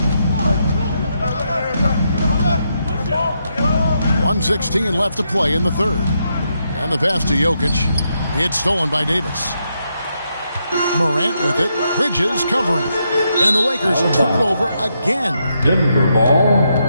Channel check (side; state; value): both; inverted; correlation -0.81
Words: 1:16 left to play in the third. And the pass to Jokic. It's stolen by Davis. Morant with it. Bridges covering. And the Lakers turn it over again. Denver ball.